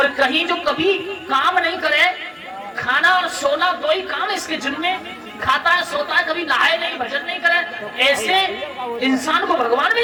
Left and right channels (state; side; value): identical; both; correlation 1.00